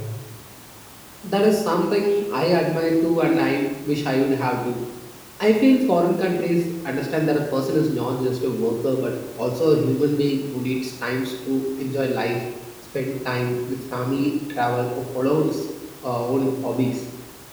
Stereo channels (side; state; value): both; identical; correlation 1.00